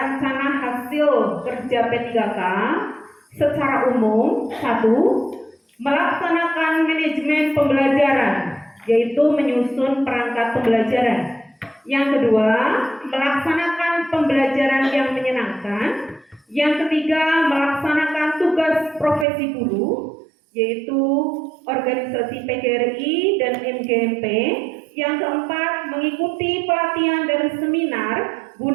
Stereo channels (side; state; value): left; drops out; at 19.2 s